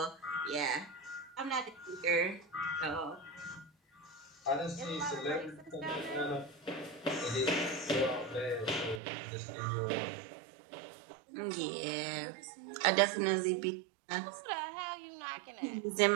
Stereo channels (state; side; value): drops out; left; at 9.0 s